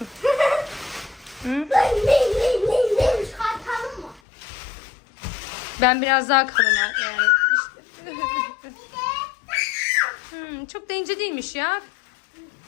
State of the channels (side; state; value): right; drops out; at 4.2 s